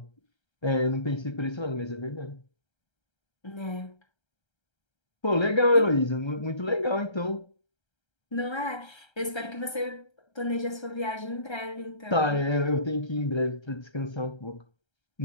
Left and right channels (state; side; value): late; right; 1.3 ms